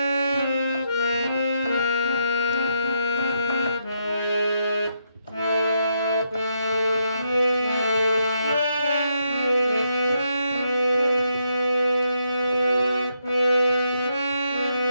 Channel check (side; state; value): both; inverted; correlation -0.79